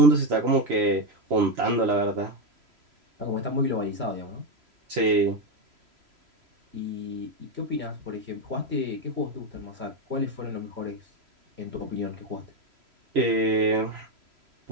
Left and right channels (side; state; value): left; late; 3.0 ms